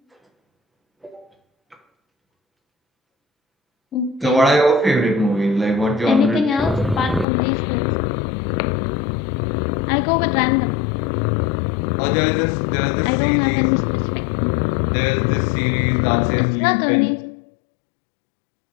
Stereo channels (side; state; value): right; drops out; at 7.2 s